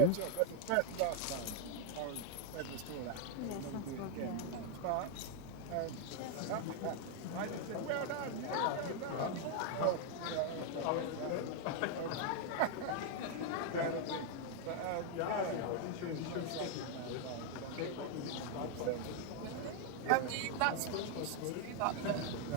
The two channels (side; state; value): both; different; correlation 0.01